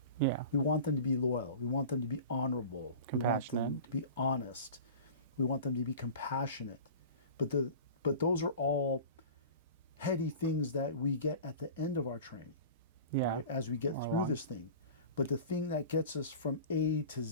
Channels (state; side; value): inverted; both; correlation -0.37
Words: Yeah. We want them to be loyal. We want them to be honorable. We want them to be honest. We want them to be compassionate. But those are all heady things that we get at the end of our training, right? As we get through this thing. But the thing that gets us from A to